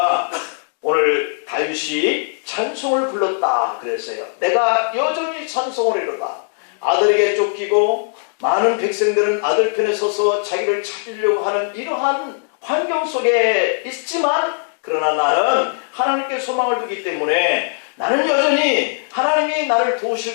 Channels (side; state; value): right; silent; digital silence